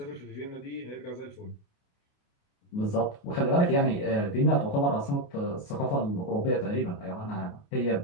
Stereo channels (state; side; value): late; right; 28 ms